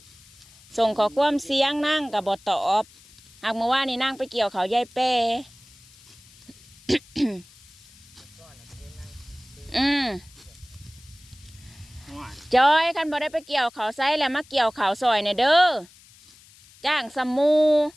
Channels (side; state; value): left; noise; hiss, 25 dB below the sound